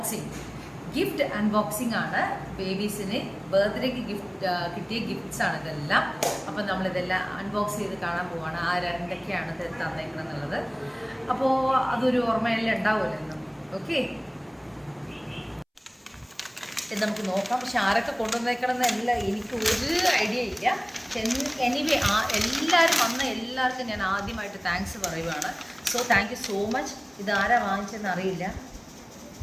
ഗിഫ്റ്റ് അൺബോക്സിംഗ് ആണ്. ബേബീസിന് ബർത്ത്ഡേക്ക് കിട്ടിയ ഗിഫ്റ്റ്സ് ആണ് ഇതെല്ലാം. അപ്പം നമ്മളിതെല്ലാം അൺബോക്സ് ചെയ്ത് കാണാൻ പോവാണ്. എന്തൊക്കെയാണ് തന്നേക്കണം എന്നുള്ളത്. അപ്പോൾ അതൊരു ഓർമ്മയെല്ലാം ഉണ്ടാവുമല്ലോ. ഓക്കെ, ഇത് നമുക്ക് നോക്കാം. പക്ഷെ ആരൊക്കെ കൊണ്ടുവന്നേക്കണമെന്നല്ല എനിക്ക് ഒരു ഐഡിയ ഇല്ല. എനിവേ എല്ലാവരും വന്ന എല്ലാവർക്കും ഞാൻ ആദ്യമായിട്ട് താങ്ക്സ് പറയുവാണ്. So thank you so much. ഇത് ആരാ വാങ്ങിച്ചതെന്ന് അറിയില്ല.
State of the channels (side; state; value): both; identical; correlation 1.00